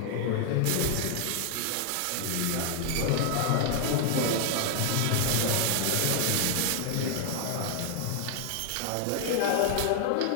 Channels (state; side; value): different; both; correlation 0.00